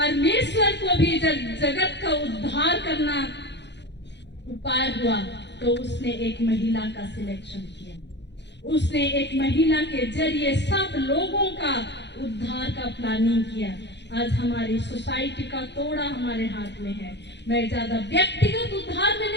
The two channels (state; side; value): late; right; 0.51 ms